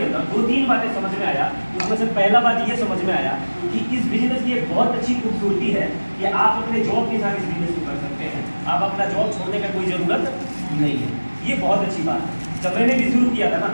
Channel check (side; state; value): both; inverted; correlation -1.00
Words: अंदर 2-3 बातें समझ में आया। उसमें से पहला बात ये समझ में आया कि इस बिजनेस की एक बहुत अच्छी खूबसूरती है कि आप अपने जॉब के साथ इस बिजनेस को कर सकते हैं। आप अपना जॉब छोड़ने का कोई ज़रूरत नहीं है। ये बहुत अच्छी बात है। जब मैंने भी शुरू किया था ना,